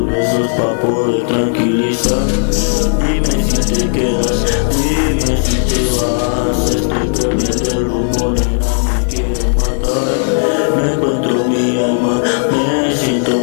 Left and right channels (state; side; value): silent; right; digital silence